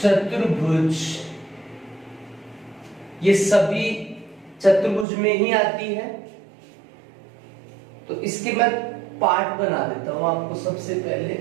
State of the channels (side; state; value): left; drops out; at 5.1 s